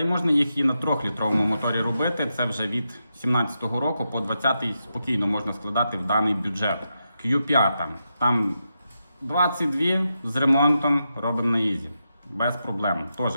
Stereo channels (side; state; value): both; inverted; correlation -0.86